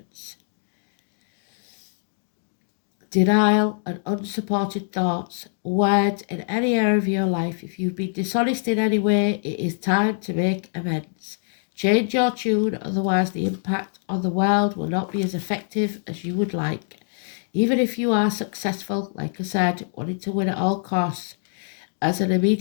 Denial and unsupported thoughts, words in any area of your life. If you've been dishonest in any way, it is time to make amends. Change your tune, otherwise the impact on the world will not be as effective as you would like. Even if you are successful, like I said, wanting to win at all costs, as an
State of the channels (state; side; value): silent; right; digital silence